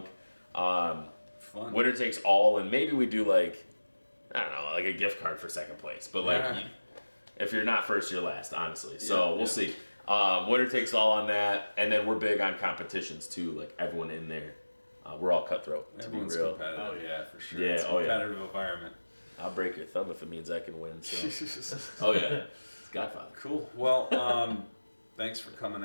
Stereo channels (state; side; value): inverted; both; correlation -1.00